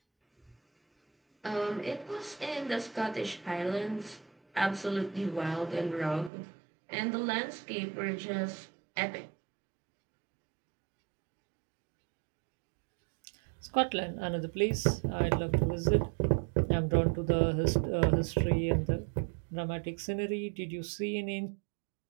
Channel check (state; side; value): drops out; left; at 6.3 s